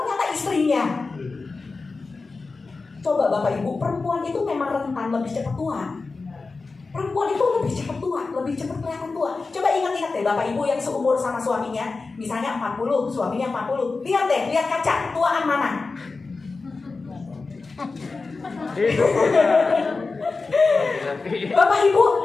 istrinya. Coba Bapak Ibu, perempuan itu memang rentan lebih cepat tua. Perempuan itu lebih cepat tua, lebih cepat kelihatan tua. Coba ingat-ingat deh Bapak Ibu yang seumur sama suaminya, misalnya 40, suaminya 40. Lihat deh, lihat kaca, tuaan mana? Bapak Ibu,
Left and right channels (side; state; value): right; quieter; 4.0 dB